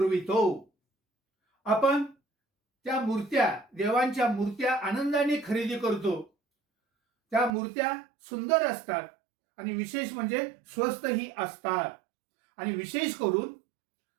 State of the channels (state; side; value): drops out; left; at 7.5 s